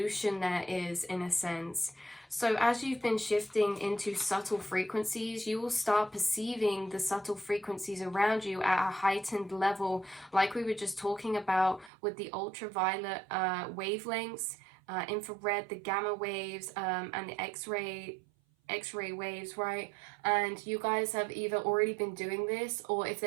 there is, in a sense. So as you've been shifting into subtle frequencies, you will start perceiving the subtle frequencies around you at a heightened level, like we were just talking about with the ultraviolet wavelengths, infrared, the gamma waves, and the X-ray waves, right? And you guys have either already been doing this, or if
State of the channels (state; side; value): drops out; left; at 11.9 s